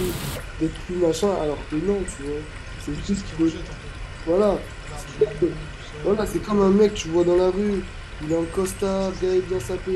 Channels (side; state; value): both; identical; correlation 1.00